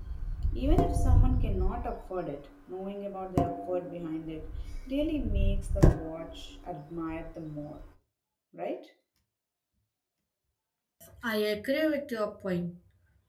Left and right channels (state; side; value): identical; both; correlation 1.00